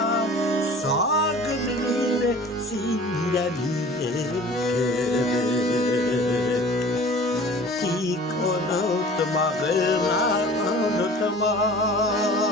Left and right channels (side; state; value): both; normal; correlation 0.44